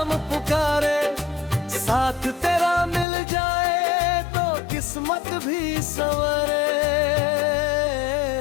पुकारे, साथ तेरा मिल जाए तो किस्मत भी संवरे।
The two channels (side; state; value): right; drops out; at 3.1 s